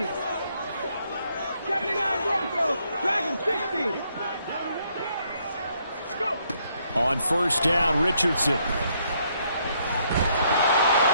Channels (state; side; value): inverted; both; correlation -0.72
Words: 79 Broncos. Dragon 60. Go. On first down, Richardson.